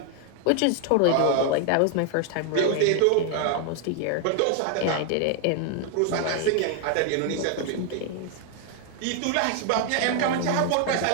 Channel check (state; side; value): different; both; correlation 0.00